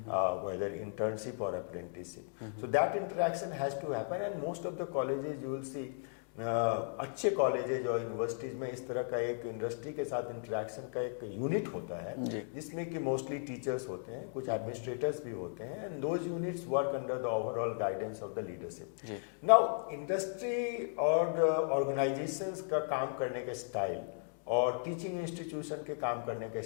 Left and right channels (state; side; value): silent; right; digital silence